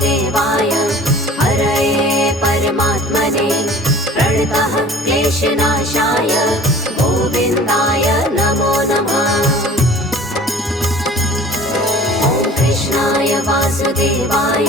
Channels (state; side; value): normal; both; correlation 0.45